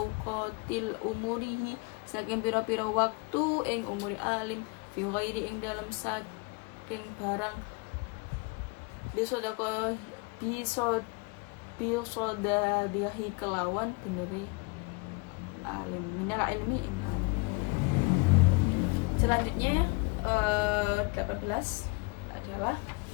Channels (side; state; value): right; quieter; 29.4 dB